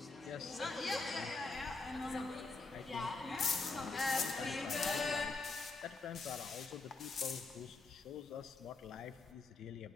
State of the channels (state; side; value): quieter; right; 3.7 dB